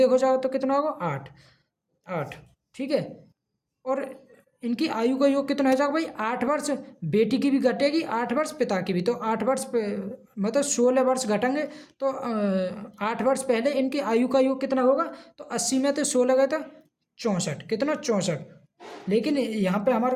जाओ तो कितना होगा, 8, ठीक है। और इनकी आयु का योग कितना हो जाएगा भाई, 8 वर्ष बेटी की भी घटेगी, 8 वर्ष पिता की भी। तो 8 वर्ष मतलब 16 वर्ष घटेंगे। तो 8 वर्ष पहले इनकी आयु का योग कितना होगा, तो 80 में तो 16 गए तो 64, कितना 64। लेकिन यहाँ पे हमारा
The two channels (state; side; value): identical; both; correlation 1.00